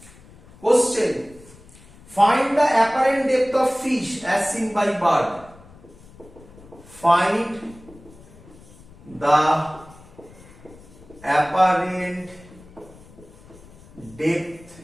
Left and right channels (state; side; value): noise; left; rumble, 23 dB below the sound